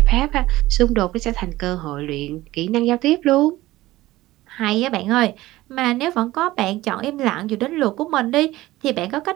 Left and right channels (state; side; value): quieter; left; 17.3 dB